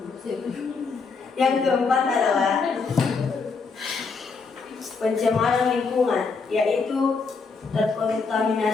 Yang keempat adalah pencemaran lingkungan, yaitu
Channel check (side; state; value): right; quieter; 4.7 dB